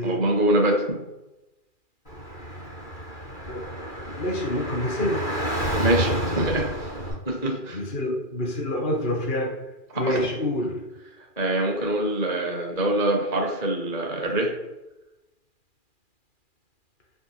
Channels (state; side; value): late; right; 2.4 ms